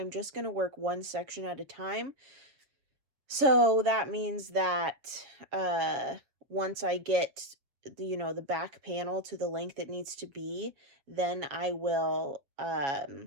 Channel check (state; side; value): late; left; 7.3 ms